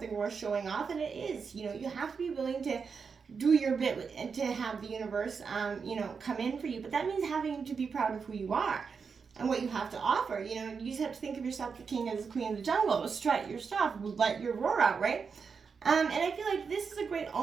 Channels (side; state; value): left; quieter; 5.6 dB